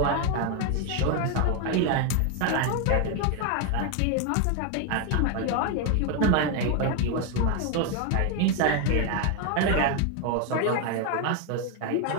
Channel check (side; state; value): both; different; correlation 0.01